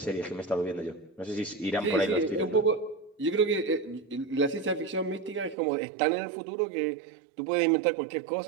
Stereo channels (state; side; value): drops out; left; at 5.6 s